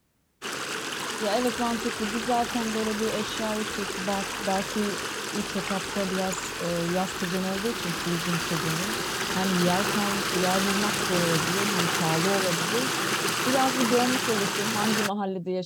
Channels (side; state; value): both; identical; correlation 1.00